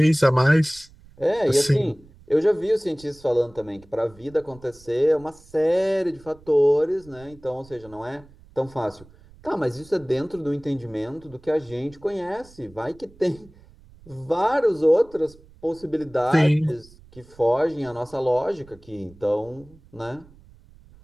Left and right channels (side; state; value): right; noise; rumble, 24 dB below the sound